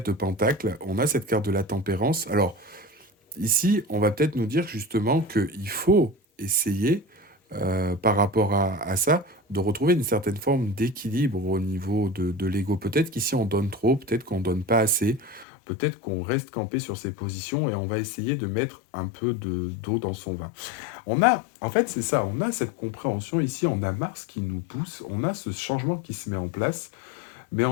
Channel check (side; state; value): right; drops out; at 15.5 s